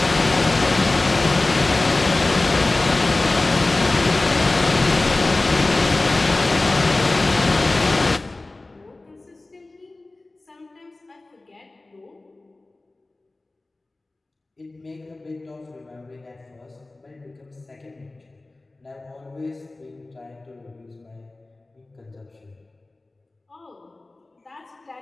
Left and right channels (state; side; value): quieter; right; 3.0 dB